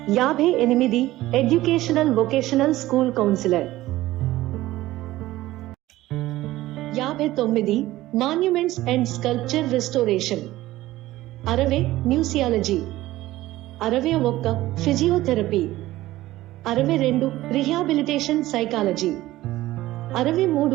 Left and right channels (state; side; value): quieter; left; 16.4 dB